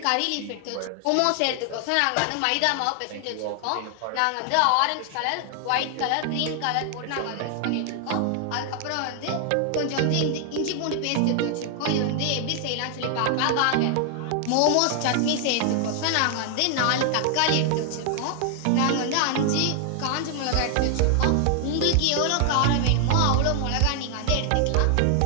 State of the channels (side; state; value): both; different; correlation 0.00